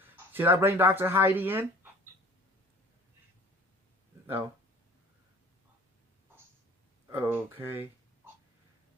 Should I bring Dr. Heidi in? No. Okay.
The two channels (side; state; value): both; normal; correlation 0.47